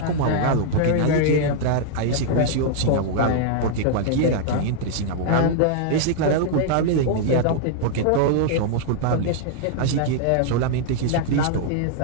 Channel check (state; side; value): different; both; correlation -0.01